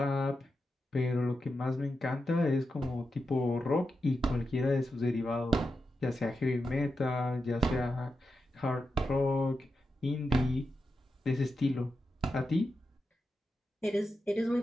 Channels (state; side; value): normal; both; correlation 0.89